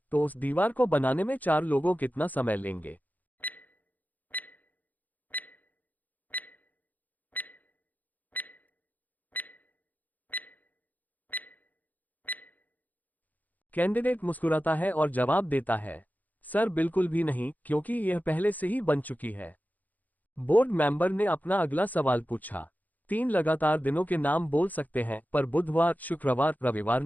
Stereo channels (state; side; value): late; right; 0.081 ms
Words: तो उस दीवार को बनाने में 4 लोगों कितना समय लेंगे? कैंडिडेट मुस्कुराता है और जवाब देता है, सर बिल्कुल भी नहीं, क्योंकि यह पहले से ही बन चुकी है। बोर्ड मेंबर ने अपना अगला सवाल पूछा, 3 लगातार दिनों के नाम बोल सकते हैं पर बुधवार, शुक्रवार, रविवार